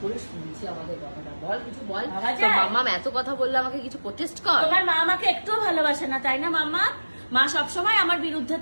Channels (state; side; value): inverted; both; correlation -1.00